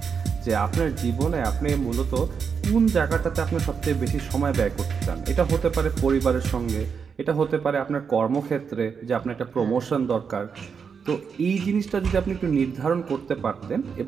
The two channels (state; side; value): quieter; left; 6.2 dB